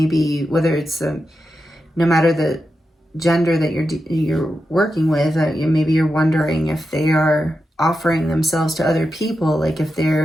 whether it's no matter the gender that you're working with, maybe you're wondering if they are offering themselves to other people, like if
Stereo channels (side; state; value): both; normal; correlation 0.89